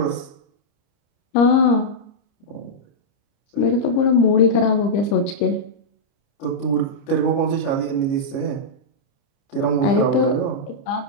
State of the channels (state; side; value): late; right; 30 ms